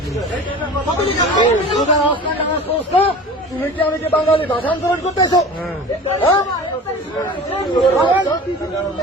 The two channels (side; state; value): both; normal; correlation 0.37